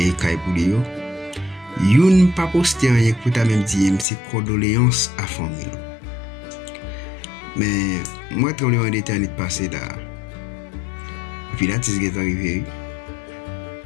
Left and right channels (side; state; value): right; drops out; at 4.0 s